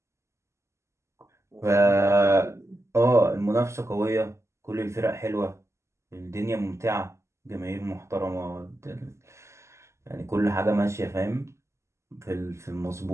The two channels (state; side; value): late; left; 0.13 ms